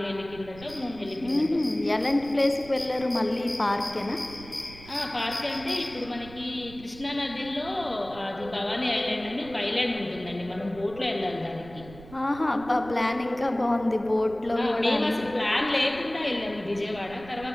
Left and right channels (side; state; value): right; noise; rumble, 17 dB below the sound